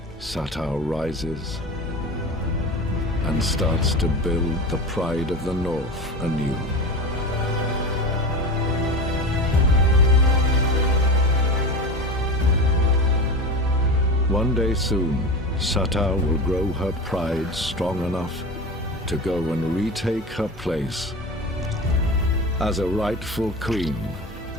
Sato rises and starts to build the pride of the North anew. One day soon, Sato will grow her pride strong enough to go and retake her place as a rightful queen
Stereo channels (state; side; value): normal; both; correlation 0.28